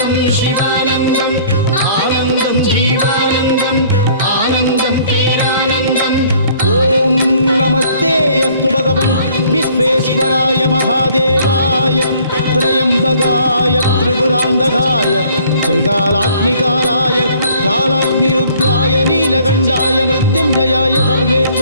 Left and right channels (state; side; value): inverted; both; correlation -0.57